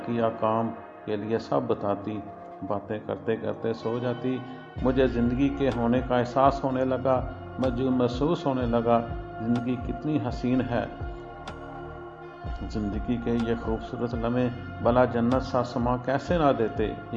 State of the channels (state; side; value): identical; both; correlation 1.00